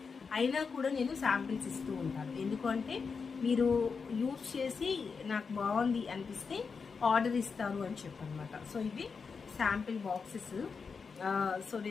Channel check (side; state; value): right; quieter; 5.3 dB